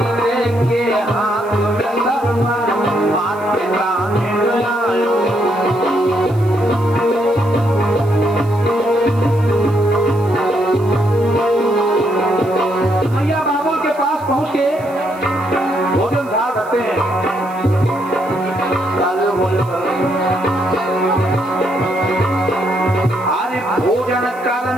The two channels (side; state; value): right; noise; hiss, 26 dB below the sound